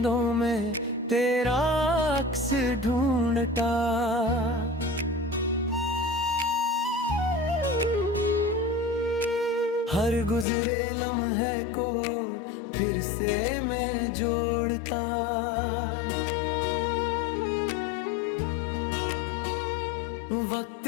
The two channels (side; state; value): right; drops out; at 10.5 s